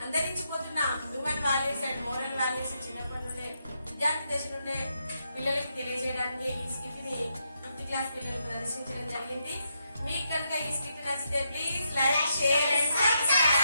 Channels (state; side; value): inverted; both; correlation -0.81